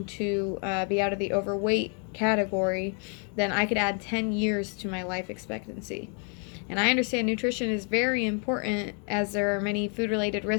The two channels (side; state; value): right; quieter; 39.1 dB